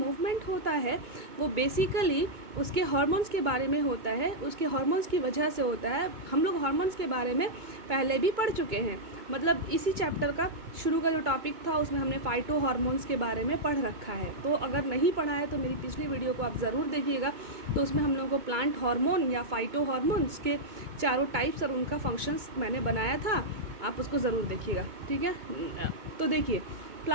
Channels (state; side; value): late; left; 2.2 ms